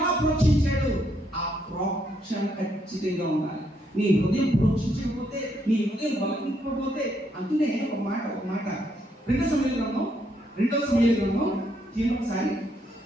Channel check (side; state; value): both; normal; correlation 0.75